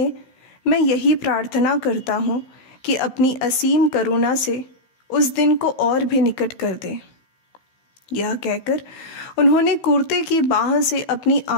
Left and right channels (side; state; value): right; late; 16 ms